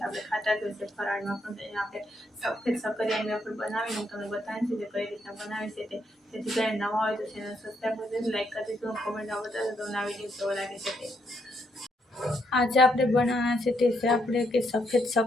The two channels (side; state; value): both; normal; correlation 0.76